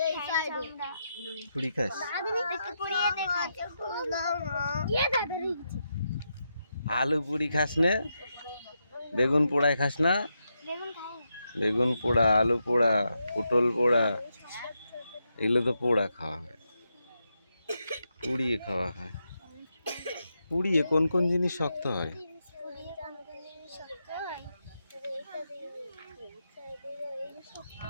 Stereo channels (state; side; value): inverted; both; correlation -0.84